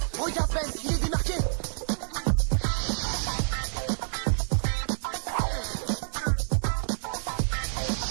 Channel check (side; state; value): left; silent; digital silence